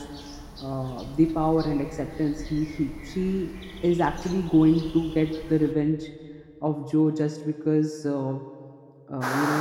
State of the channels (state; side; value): identical; both; correlation 1.00